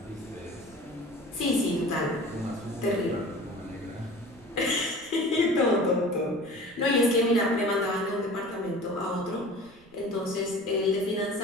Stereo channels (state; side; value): noise; right; rumble, 28 dB below the sound